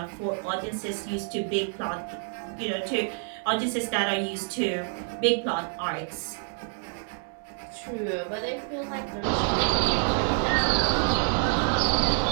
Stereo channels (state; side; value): silent; left; 57 dB below the other